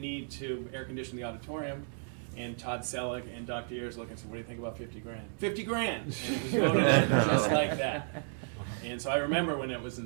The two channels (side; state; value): left; silent; digital silence